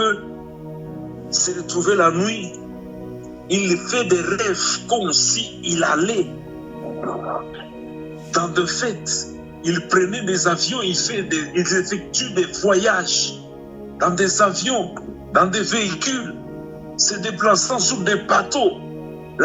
se retrouver la nuit, il fait des rêves comme s'il allait dans des fêtes. Il prenait des avions, il effectue des voyages dans des avions, dans des véhicules, se déplaçant sur des bateaux.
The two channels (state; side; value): identical; both; correlation 1.00